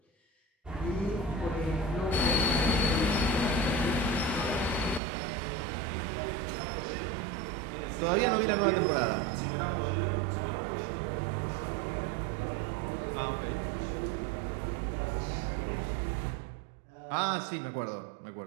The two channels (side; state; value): left; drops out; at 5.0 s